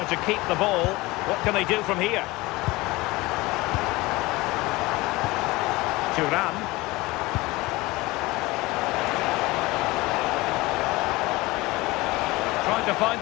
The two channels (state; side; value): quieter; right; 21.1 dB